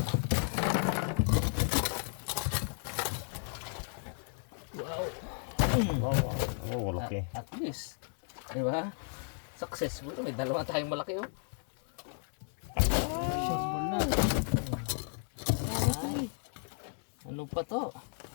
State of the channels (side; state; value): right; silent; 55 dB below the other